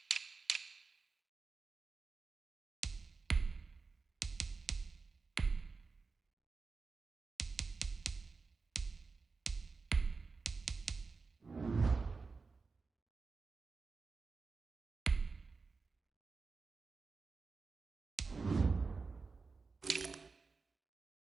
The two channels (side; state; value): left; quieter; 4.4 dB